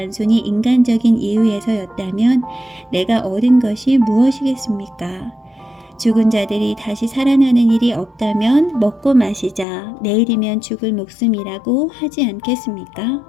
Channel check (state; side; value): drops out; right; at 9.7 s